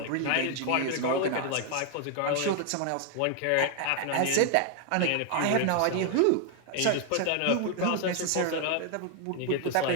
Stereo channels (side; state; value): both; different; correlation 0.00